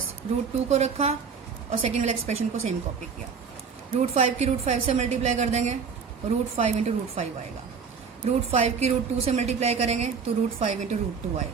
√2 को रखा और सेकेंड वाले एक्सप्रेशन को सेम कॉपी किया। √5 की √5 से मल्टीप्लाई कर देंगे, √5 × √5 आएगा। √5 की √2 से मल्टीप्लाई करेंगे तो √5 × √2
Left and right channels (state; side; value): quieter; left; 5.9 dB